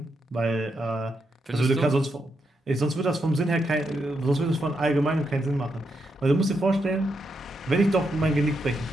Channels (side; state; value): both; normal; correlation 0.82